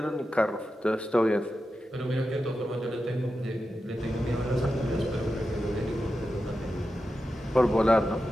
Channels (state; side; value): normal; both; correlation 0.90